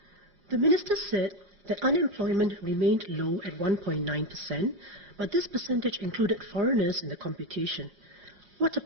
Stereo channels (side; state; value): left; late; 5.5 ms